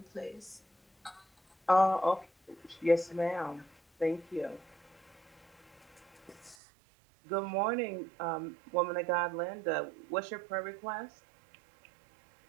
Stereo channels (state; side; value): drops out; left; at 6.6 s